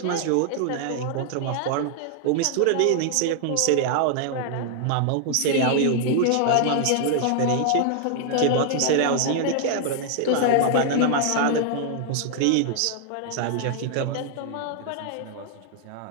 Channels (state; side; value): different; both; correlation 0.00